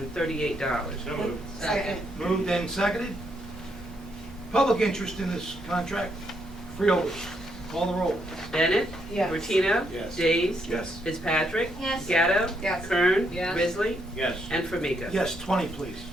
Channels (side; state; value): both; normal; correlation 0.76